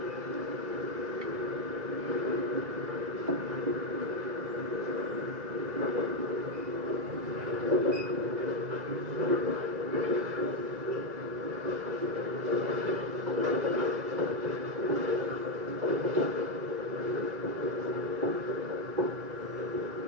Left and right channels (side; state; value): left; late; 2.0 ms